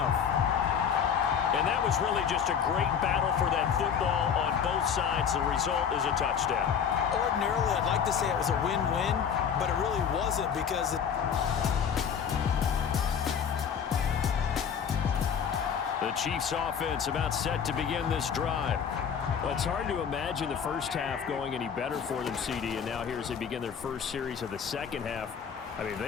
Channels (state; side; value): quieter; right; 7.5 dB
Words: And that was really just a great battle for that football on both sides. The result is a touchdown. Ordinarily, I'd like to say it was a win-win, but it really wasn't because the Chiefs offense about set to begin this drive. Well, it's hard to imagine the first half going any better for them, CD, and now here as they begin their first series of the second half. I mean,